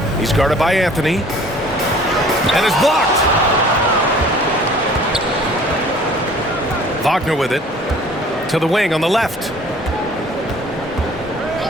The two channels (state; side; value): normal; both; correlation 0.51